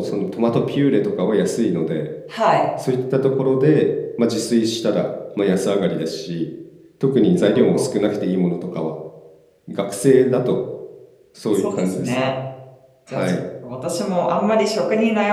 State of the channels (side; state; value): both; identical; correlation 1.00